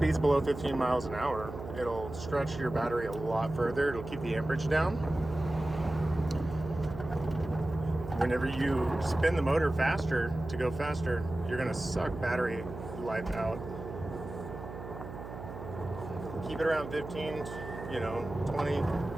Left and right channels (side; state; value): right; noise; hum, 10 dB below the sound